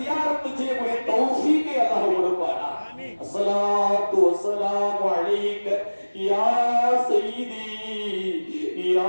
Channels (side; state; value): both; inverted; correlation -1.00